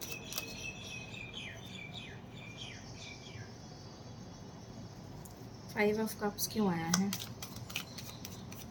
फाइव ऑफ कप्स क्यों आया है?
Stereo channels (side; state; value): both; identical; correlation 1.00